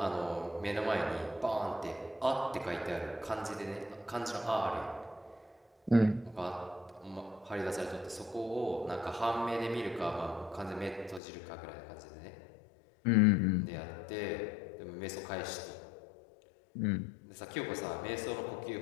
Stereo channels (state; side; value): drops out; right; at 11.2 s